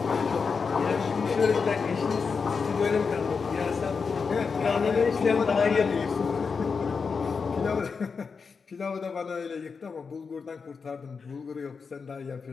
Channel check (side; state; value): right; quieter; 5.3 dB